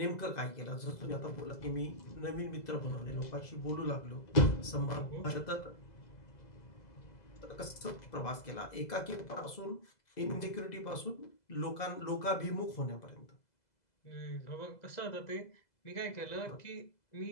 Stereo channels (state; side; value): late; right; 2.0 ms